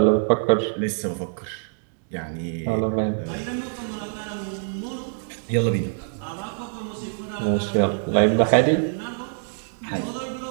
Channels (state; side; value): silent; left; digital silence